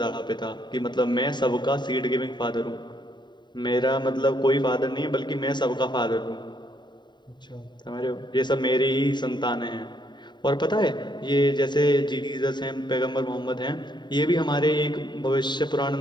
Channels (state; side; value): late; right; 0.22 ms